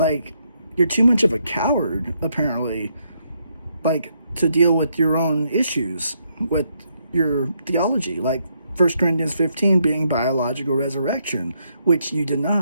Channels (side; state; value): both; inverted; correlation -0.76